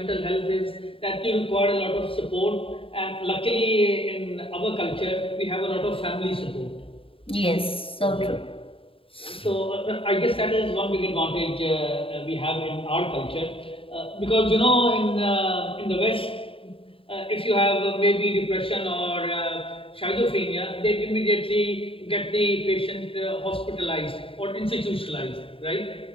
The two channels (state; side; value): late; right; 0.26 ms